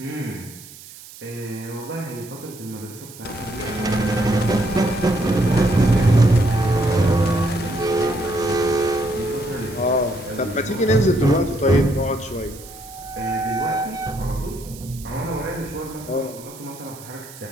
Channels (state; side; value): noise; right; hiss, 18 dB below the sound